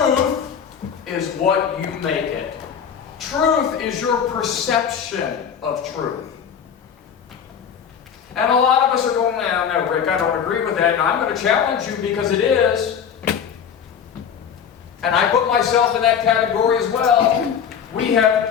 is what you make it. Truth is your perception of truth. And a lot of us are going, no, Rick, I don't agree with that. And I'm going to challenge you because it is. And I put myself in that category as well. We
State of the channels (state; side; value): quieter; right; 7.7 dB